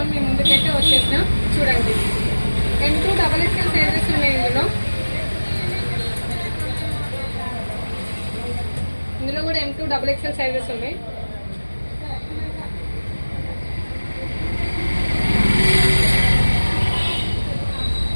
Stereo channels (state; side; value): inverted; both; correlation -1.00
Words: మీ ముందుకైతే వచ్చేసినా. చూడండి, M2 XXL సైజెస్ ఉన్నాయి. ఇందులో కూడా M2 XXL సైజెస్ ఉన్నాయి.